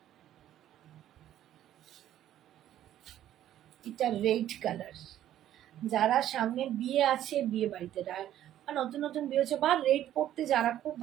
এটা রেড কালার। যারা সামনে বিয়ে আছে, বিয়ে বাড়িতে নতুন নতুন বিয়ে হচ্ছে, বা রেড পরতে যারা খুব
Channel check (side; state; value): left; quieter; 12.0 dB